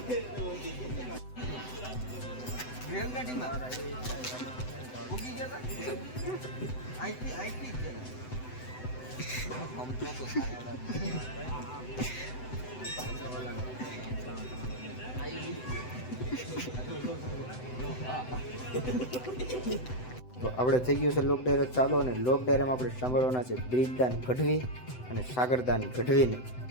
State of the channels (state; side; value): late; right; 7.9 ms